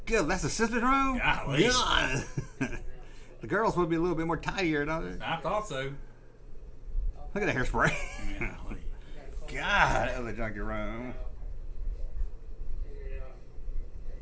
Good. That's the sister's room? Golly. God. The girls would be a little bit more tidier, don't they? I thought so. Look at that hairspray. Golly. God, that was a junky room. Figured out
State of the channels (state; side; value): identical; both; correlation 1.00